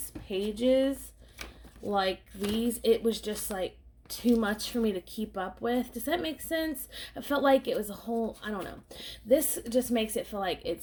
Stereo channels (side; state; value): both; identical; correlation 1.00